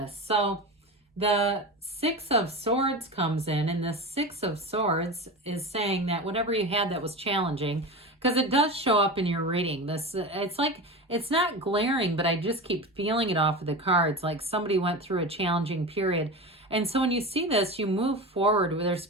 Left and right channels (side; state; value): both; normal; correlation 0.26